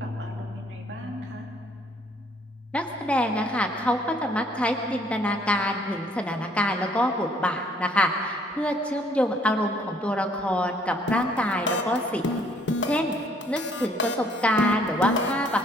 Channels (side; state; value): both; normal; correlation 0.63